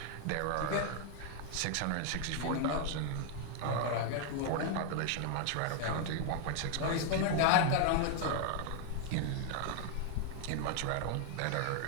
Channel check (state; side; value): different; both; correlation 0.00